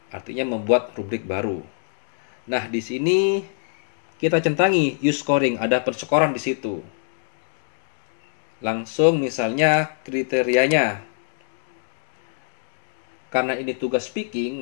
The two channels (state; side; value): silent; right; digital silence